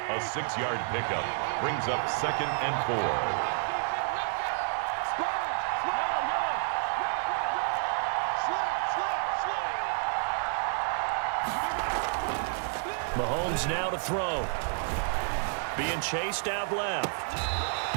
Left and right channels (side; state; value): left; silent; digital silence